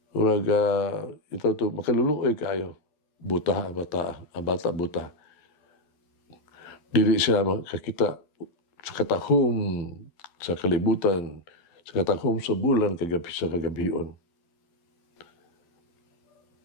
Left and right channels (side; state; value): right; late; 12 ms